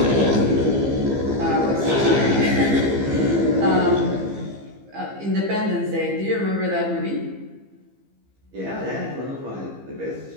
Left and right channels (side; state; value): left; late; 15 ms